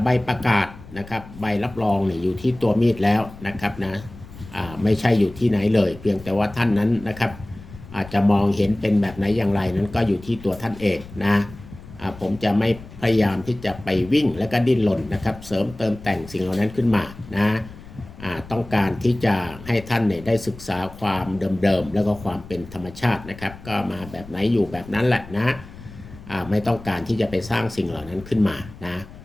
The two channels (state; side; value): noise; left; rumble, 17 dB below the sound